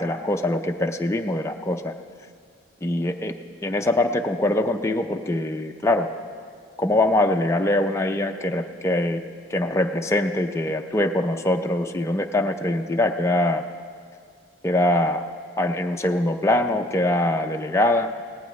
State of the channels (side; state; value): both; normal; correlation 0.62